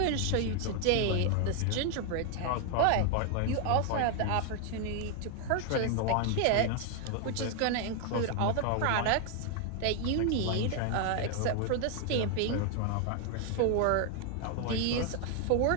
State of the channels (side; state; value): both; different; correlation 0.00